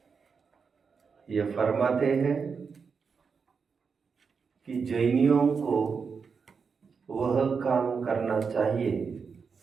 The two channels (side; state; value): left; quieter; 5.6 dB